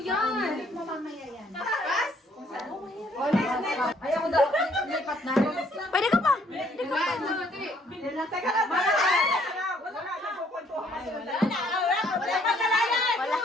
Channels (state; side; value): normal; both; correlation 0.65